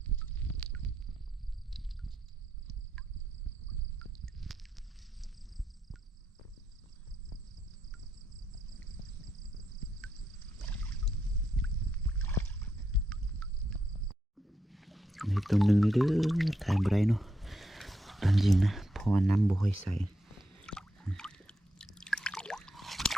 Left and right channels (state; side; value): normal; both; correlation 0.82